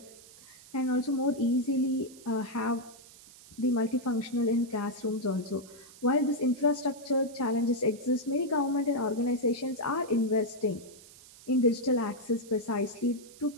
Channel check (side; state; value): right; noise; hiss, 21 dB below the sound